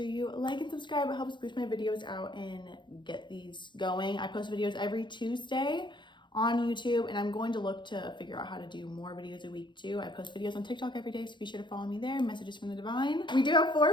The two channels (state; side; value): late; right; 0.23 ms